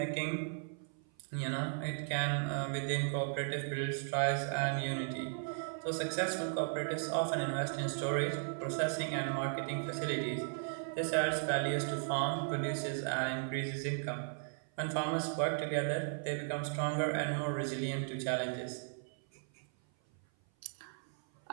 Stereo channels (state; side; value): silent; left; 54 dB below the other